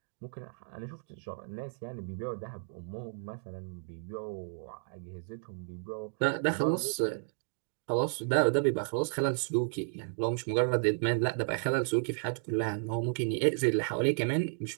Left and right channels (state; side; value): silent; left; digital silence